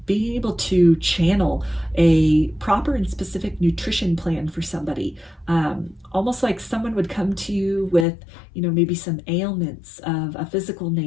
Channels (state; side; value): drops out; right; at 8.1 s